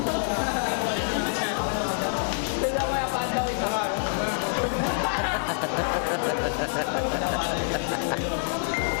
Sila mo yung pandaw ito.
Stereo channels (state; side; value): silent; right; digital silence